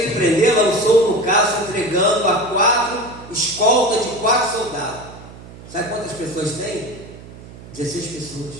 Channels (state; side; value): noise; right; hum, 17 dB below the sound